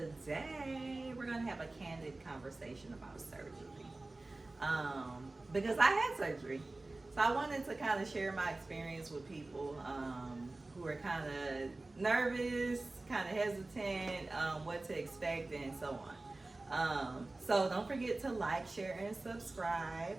we're gonna have a candid conversation about surgery. Because I had surgery. So I wanted to kind of share my experience with people who are kind of nervous, kind of hesitant, what to expect, and so on. So don't forget to like, share, and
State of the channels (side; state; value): left; quieter; 3.0 dB